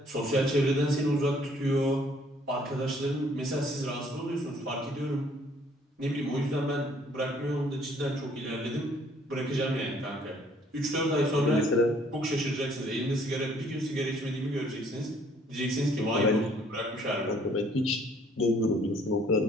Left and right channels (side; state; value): both; normal; correlation 0.61